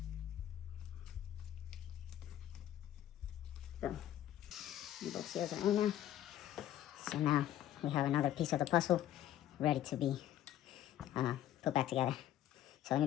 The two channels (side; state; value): right; quieter; 12.2 dB